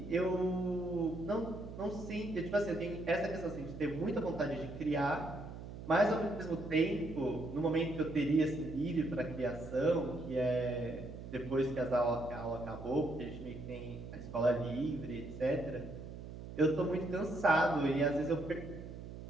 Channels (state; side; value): noise; right; hum, 11 dB below the sound